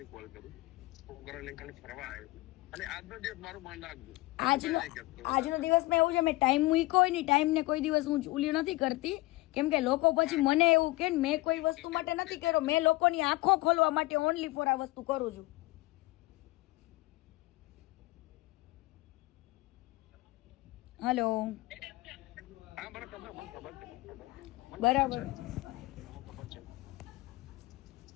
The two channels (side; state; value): right; quieter; 20.6 dB